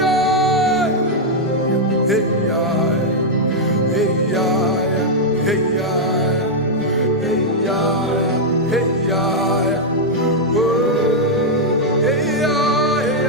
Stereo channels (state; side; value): normal; both; correlation -0.03